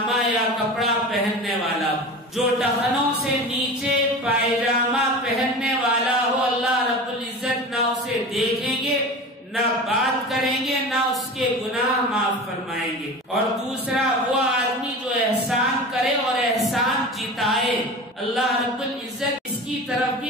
یا کپڑا پہننے والا، جو ٹخنوں سے نیچے پائجامہ پہننے والا ہو، اللہ رب العزت نہ اسے دیکھیں گے، نہ بات کریں گے، نہ اس کے گناہ معاف فرمائیں گے۔ اور دوسرا وہ آدمی جو احسان کرے اور احسان جتائے، اللہ رب العزت اس کی طرف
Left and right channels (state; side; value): normal; both; correlation 0.32